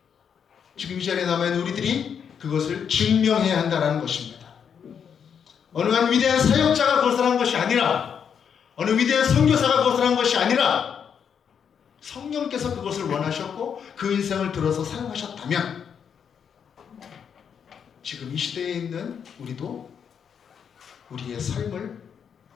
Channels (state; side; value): quieter; right; 7.4 dB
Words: 지금 이 자리에 남아있는 우리들이 그것을 증명해야 한다는 것입니다. 어느 한 위대한 사역자가 그것을 한 것이 아니라, 어느 위대한 선교사가 그것을 한 것이 아니라, 성령께서 그것을 원하셨고 그 인생을 들어서 사용하셨다면, 지금 이 시대에 있는 우리도 우리의 삶을